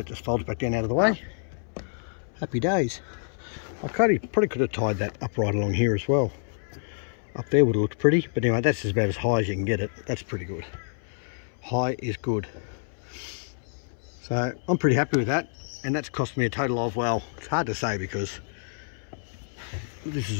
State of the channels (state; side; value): silent; right; 60 dB below the other